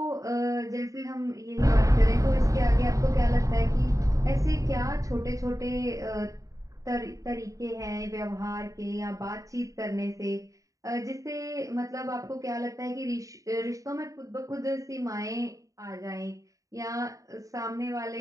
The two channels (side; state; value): left; late; 0.16 ms